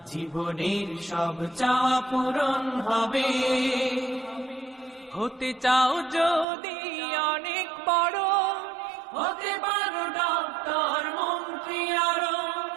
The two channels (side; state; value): left; drops out; at 6.5 s